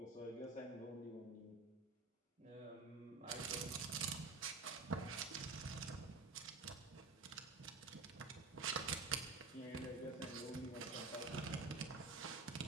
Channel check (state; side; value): quieter; left; 3.8 dB